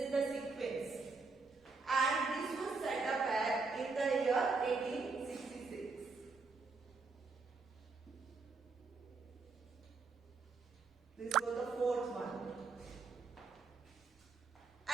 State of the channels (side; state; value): left; quieter; 4.2 dB